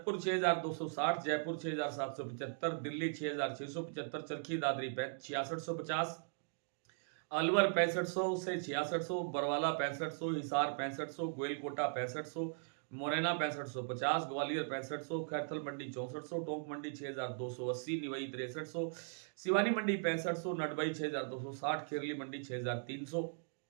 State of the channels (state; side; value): silent; left; digital silence